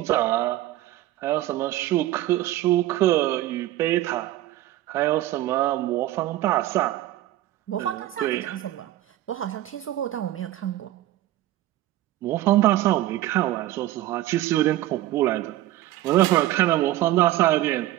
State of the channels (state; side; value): quieter; left; 15.0 dB